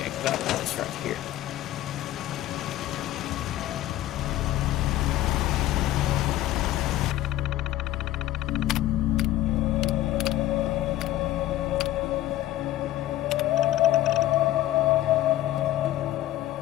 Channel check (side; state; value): right; quieter; 14.4 dB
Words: out this right here.